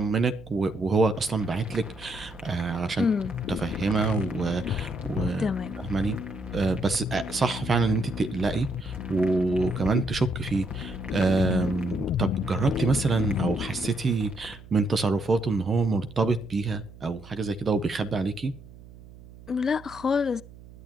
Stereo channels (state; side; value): noise; right; hum, 19 dB below the sound